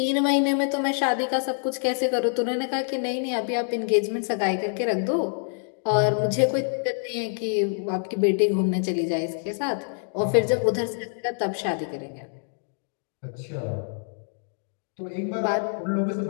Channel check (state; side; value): silent; right; 61 dB below the other